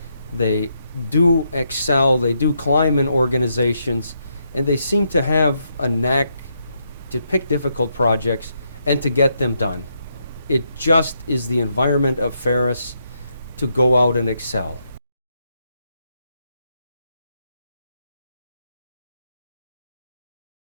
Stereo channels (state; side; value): inverted; both; correlation -0.79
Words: they do excel, they do climb in organizations, and they seem to have a knack to pick difficult projects and to get them done. It just is the environment of Ferris to go out and excel.